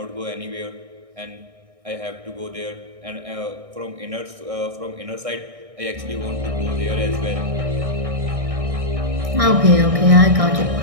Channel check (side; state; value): left; late; 1.6 ms